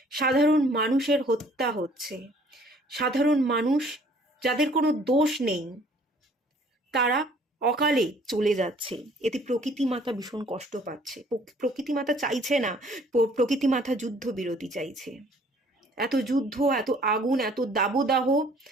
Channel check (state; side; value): normal; both; correlation 0.57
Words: সাধারণ মানুষের হত্যা হচ্ছে, সাধারণ মানুষ যাদের কোনো দোষ নেই তারা অকালে চলে যাচ্ছে। এতে প্রকৃতি মাতা ভীষণ কষ্ট পাচ্ছে। প্রকৃতি মাতা চাইছে না, প্রকৃতি মাতা যুদ্ধ বিরতি চাইছে। এত যুদ্ধ, এত আগুন, এত দাবদাহ